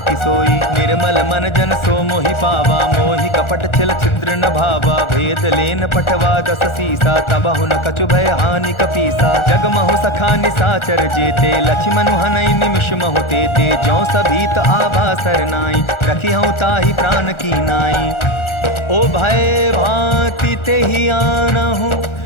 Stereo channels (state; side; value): late; right; 1.4 ms